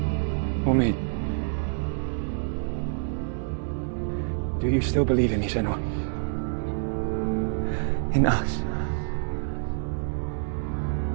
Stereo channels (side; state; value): left; silent; 60 dB below the other